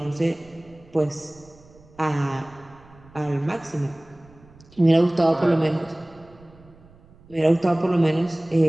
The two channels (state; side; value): noise; right; rumble, 25 dB below the sound